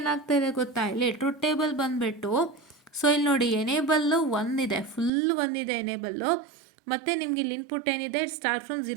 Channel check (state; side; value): drops out; left; at 5.1 s